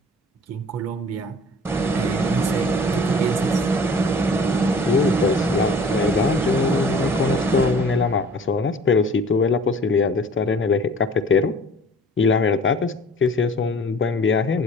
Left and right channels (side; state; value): both; normal; correlation 0.48